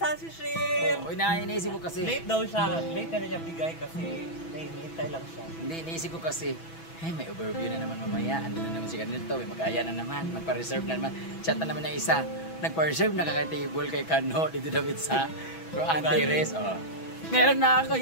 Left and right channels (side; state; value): right; late; 6.1 ms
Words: Shim! Uy, iniisip ko kasi. Late daw siya. Late na niya bigay kasi nahihintay lang siya. Hindi, iniisip ko kasi. Hey, may overview na naman mamaya. Ando na naman si ganito. May mag-aya na naman. Magpa-reserve na naman. Chat na naman ng isa. Nagpa-reserve na kakay-table kay Kano. Dito David sa Antares. Oh. Meron na ako.